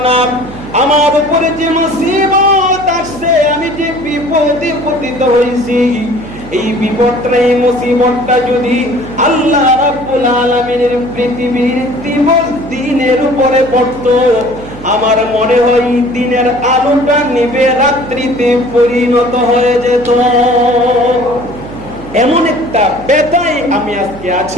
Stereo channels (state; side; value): noise; right; hum, 15 dB below the sound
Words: না। আমার উপরে যে মুসিবত আসছে, আমি যে বিপদে পতিত হইছি, এই বিপদটা, এই মুসিবতটা যদি আল্লাহ রাব্বুল আলামিনের পৃথিবীর দিবস দিনের উপরে পড়তো, আমার মনে হয় দিনের আলোটা নিভে রাত্রিতে পরিণত হয়ে যেত। এমন একটা ব্যথায় আমি আজকে